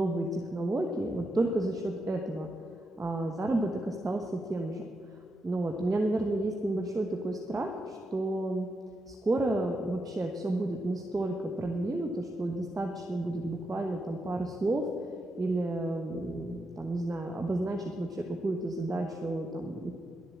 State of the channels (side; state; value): both; normal; correlation 0.84